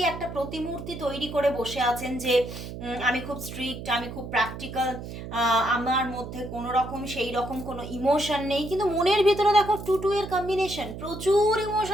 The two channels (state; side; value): noise; right; hum, 10 dB below the sound